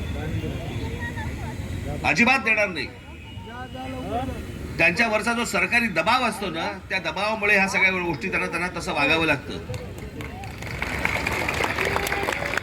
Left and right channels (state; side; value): identical; both; correlation 1.00